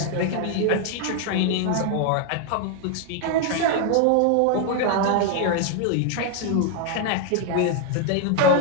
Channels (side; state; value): both; different; correlation 0.00